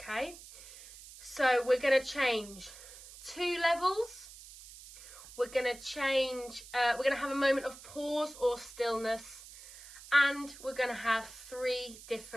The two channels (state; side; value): noise; right; hiss, 17 dB below the sound